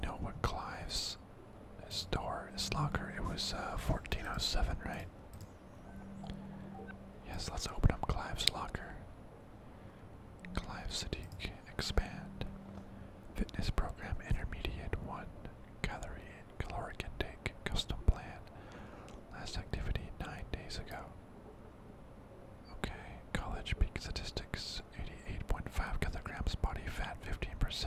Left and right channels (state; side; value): identical; both; correlation 1.00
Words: what Clive's his locker. It was 1407, right? Yes, let's open up Clive's locker. Clive Sadiq, expand. Fitness program intermediate 1. Caloric intake, custom plan. Last activity 9 days ago. Okay, college peak statistics 88.5 kilograms, body fat